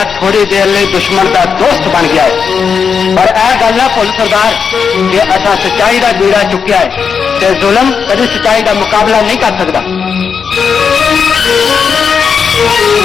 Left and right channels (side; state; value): right; quieter; 6.3 dB